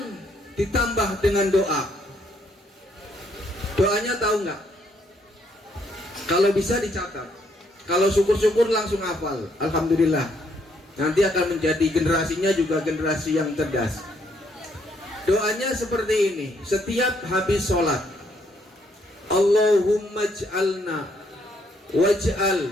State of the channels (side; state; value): both; normal; correlation 0.71